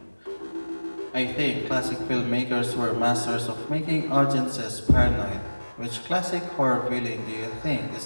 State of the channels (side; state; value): both; inverted; correlation -1.00